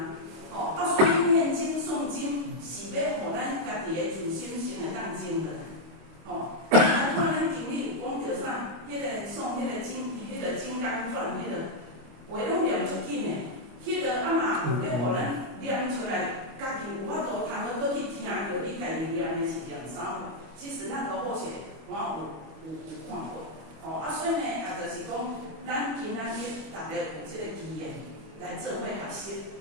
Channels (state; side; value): late; left; 25 ms